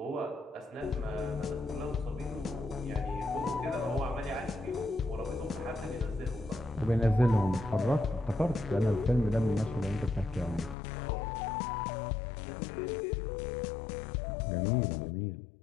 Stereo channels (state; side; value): drops out; right; at 10.8 s